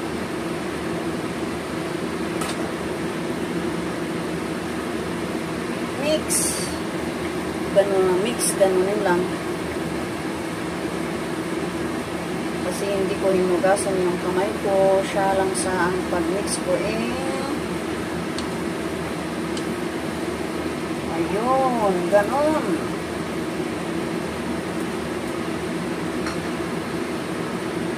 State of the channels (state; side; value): identical; both; correlation 1.00